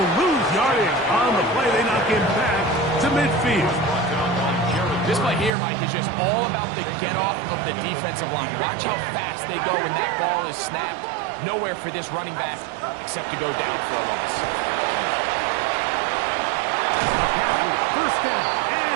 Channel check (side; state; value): left; drops out; at 5.5 s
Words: lose yardage on the play. They knock him back to midfield. This play here, Mike, is just all about the get-off of the defensive line. Watch how fast they go when that ball is snapped. Nowhere for this running back except to go down for a loss. McCaffrey, first down